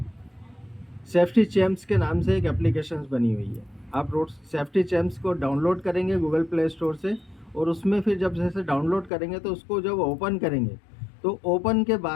सेफ्टी चैम्प्स के नाम से एक एप्लीकेशन बनी हुई है। आप रोड सेफ्टी चैम्प्स को डाउनलोड करेंगे गूगल प्ले स्टोर से, और उसमें फिर जब जैसे डाउनलोड करेंगे तो उसको जब ओपन करेंगे, तो ओपन के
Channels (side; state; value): right; drops out; at 9.1 s